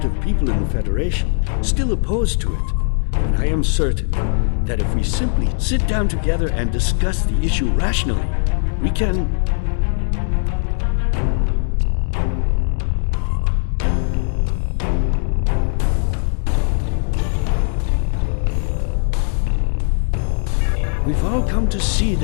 of people in the Federation still opposed to it, but I am certain that if we simply sit down together and discuss the issue rationally, we can... We've all come to see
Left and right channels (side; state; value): right; silent; digital silence